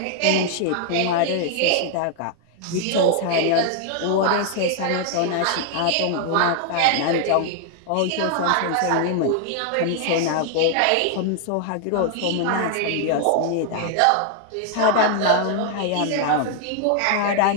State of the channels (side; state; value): both; different; correlation 0.00